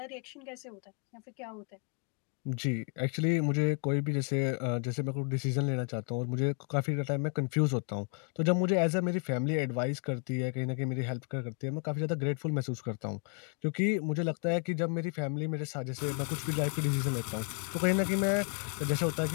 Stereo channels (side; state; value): right; quieter; 39.7 dB